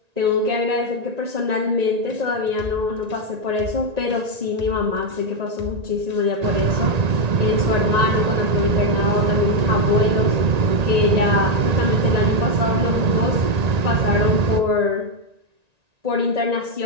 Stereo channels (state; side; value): late; left; 1.9 ms